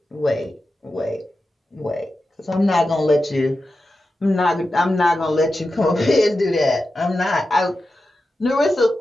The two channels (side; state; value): both; normal; correlation 0.91